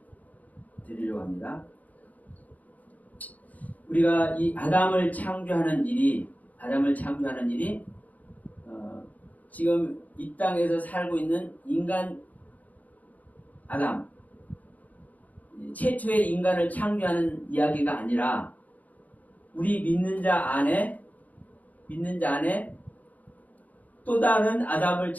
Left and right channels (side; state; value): right; late; 0.077 ms